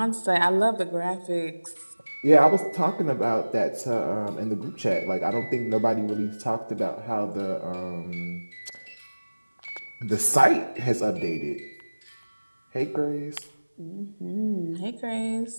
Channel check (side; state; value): both; inverted; correlation -1.00